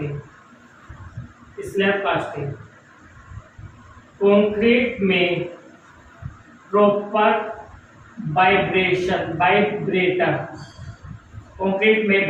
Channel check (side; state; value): both; identical; correlation 1.00